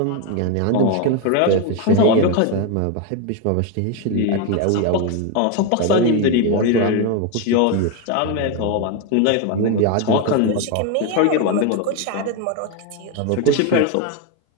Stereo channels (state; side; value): different; both; correlation 0.02